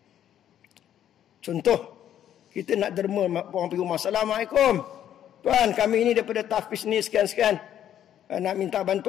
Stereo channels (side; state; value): right; quieter; 10.6 dB